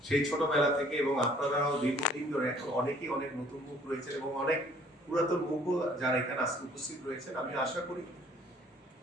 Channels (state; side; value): normal; both; correlation 0.58